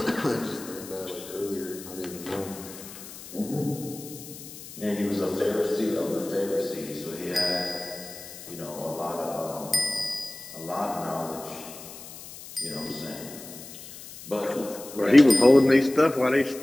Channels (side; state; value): left; noise; hiss, 15 dB below the sound